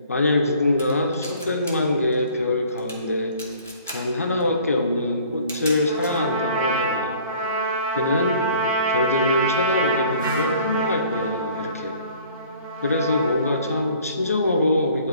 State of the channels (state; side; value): inverted; both; correlation -0.53